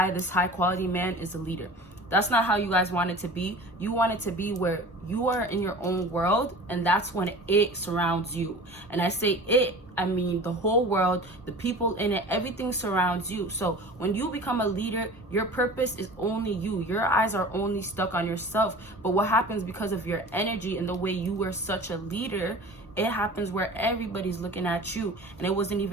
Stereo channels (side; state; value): both; normal; correlation 0.39